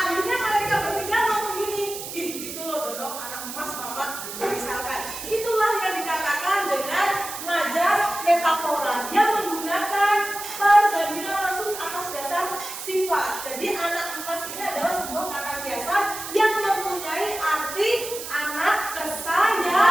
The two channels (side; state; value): right; noise; hiss, 9 dB below the sound